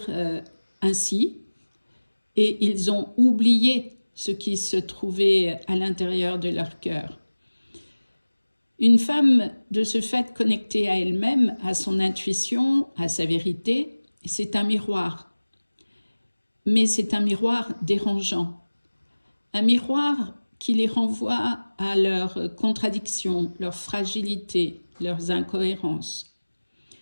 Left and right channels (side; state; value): both; inverted; correlation -1.00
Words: ainsi et ils ont oublié ce qui se trouvait à l'intérieur de leur cœur. Une femme, de ce fait connectée à elle-même, à son intuition, à sa vérité, c'est un miroir. Mais c'est un miroir dérangeant. Un miroir qui les renvoie à leurs contradictions, leurs fragilités, leurs incohérences.